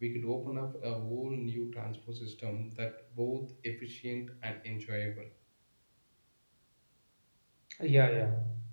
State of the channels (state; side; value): inverted; both; correlation -1.00